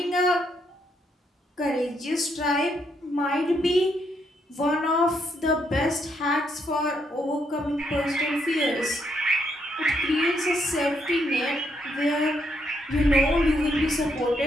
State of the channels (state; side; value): normal; both; correlation 0.75